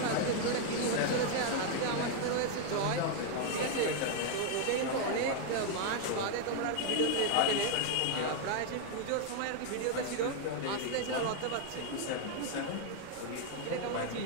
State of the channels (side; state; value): both; different; correlation 0.00